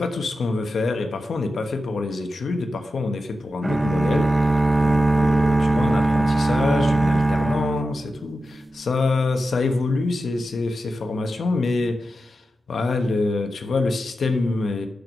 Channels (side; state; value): both; normal; correlation 0.91